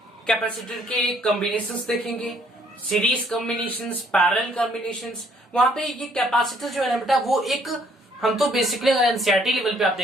कैपेसिटर के कॉम्बिनेशंस देखेंगे, सीरीज कॉम्बिनेशंस, पैरेलल कॉम्बिनेशंस। वहां पे ये कैपेसिटर जो है ना बेटा, वो एक हम तो बेसिकली अगर एनसीईआरटी लेवल पे आप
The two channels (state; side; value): normal; both; correlation 0.64